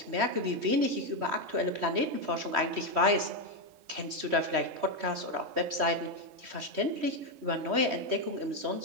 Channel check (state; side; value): late; left; 3.1 ms